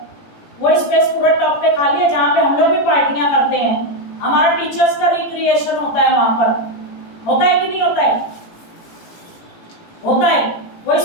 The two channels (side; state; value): right; late; 18 ms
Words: वो स्पेस पूरा टॉप पे खाली है, जहाँ पे हम लोग भी पार्टियां करते हैं। हमारा टीचर्स का रिक्रिएशन होता है वहाँ पर। होता है कि नहीं होता है? होता है। वो